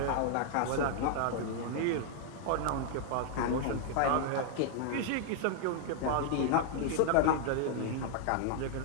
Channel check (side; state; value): both; different; correlation 0.00